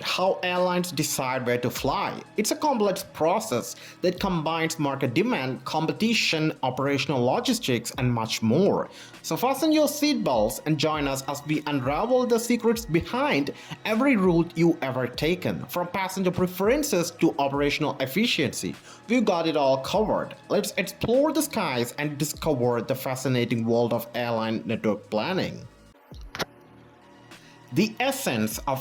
how airlines decide where to fly? It's a complex process that combines market demand, competition, operational logistics, and much more. So fasten your seatbelts and join us as we unravel the secrets behind every route you've ever taken. From passenger preferences to operational efficiency, we've got it all covered. Let's explore the skies and discover the fascinating world of airline network planning. The essence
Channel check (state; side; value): identical; both; correlation 1.00